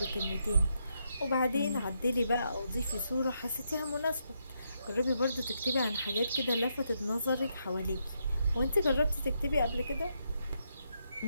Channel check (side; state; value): both; inverted; correlation -0.79